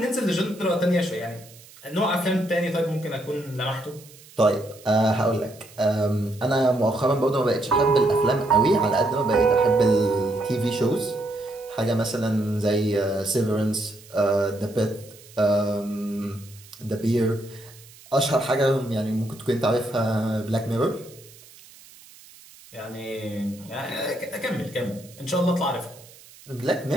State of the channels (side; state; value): right; noise; hiss, 22 dB below the sound